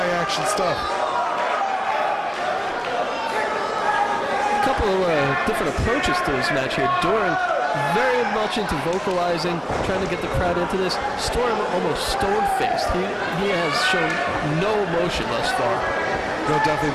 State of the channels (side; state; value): both; identical; correlation 1.00